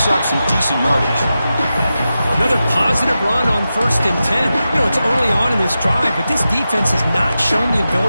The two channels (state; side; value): inverted; both; correlation -0.91